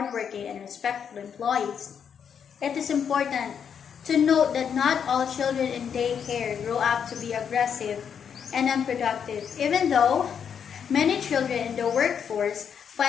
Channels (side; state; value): right; quieter; 7.6 dB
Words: and respectful employees. It is important to note that not all children in daycare grow up to be aggressive and unproductive, even though many children in the workforce